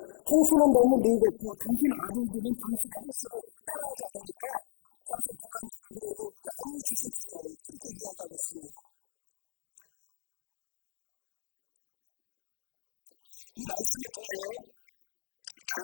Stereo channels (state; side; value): silent; right; digital silence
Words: 당신은 너무 늙었고 당신 아들들은 당신의 행실을 따라하지 않으니까 당신 그만두고 우리에게 왕을 주십시오. 그렇게 이야기하고 있습니다. 이 말씀을 통하여